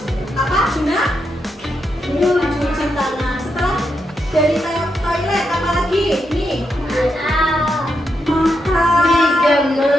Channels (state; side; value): normal; both; correlation 0.83